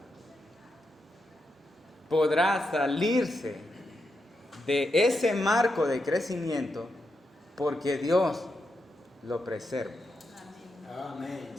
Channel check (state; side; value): normal; both; correlation 0.85